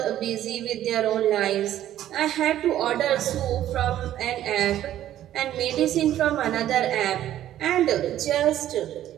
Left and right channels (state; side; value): quieter; left; 12.3 dB